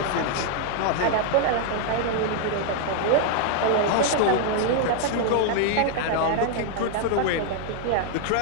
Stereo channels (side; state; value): both; different; correlation 0.00